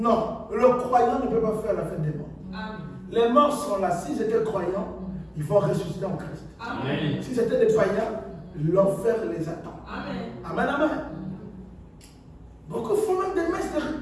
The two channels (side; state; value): both; identical; correlation 1.00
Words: le croyant ne peut pas faire la fête des morts. Amen. Les morts sont là. S'ils étaient croyants, ils vont ressusciter en Christ. Amen. Si c'était des païens, l'enfer les attend. Amen. Amen, amen. Beaucoup font même des messes de